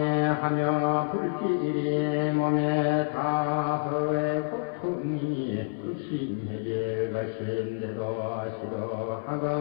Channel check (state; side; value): silent; right; 56 dB below the other